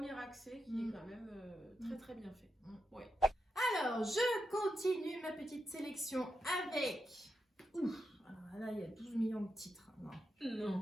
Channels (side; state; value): both; normal; correlation 0.86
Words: accès qui est quand même très très bien fait. Ouais. Alors, je continue ma petite sélection avec... Alors là, il y a 12 millions de titres.